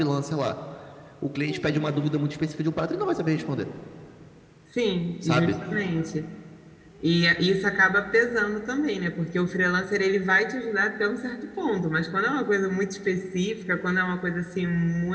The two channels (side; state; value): both; identical; correlation 1.00